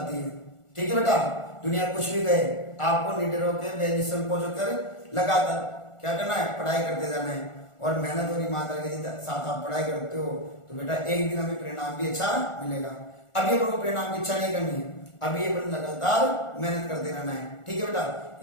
है। ठीक है बेटा? दुनिया कुछ भी कहे, आपको निडर होकर बेनिसन को कर लगातार क्या करना है? पढ़ाई करते जाना है। और मेहनत और ईमानदारी के साथ आप पढ़ाई करते हो तो बेटा एक दिन हमें परिणाम भी अच्छा मिलेगा। अभी अपन को परिणाम की इच्छा नहीं करनी है, अभी अपन लगातार मेहनत करते रहना है। ठीक है बेटा?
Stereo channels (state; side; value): late; right; 1.4 ms